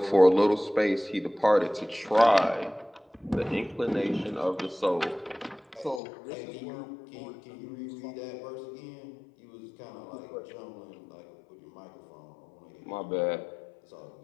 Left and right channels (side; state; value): right; drops out; at 6.0 s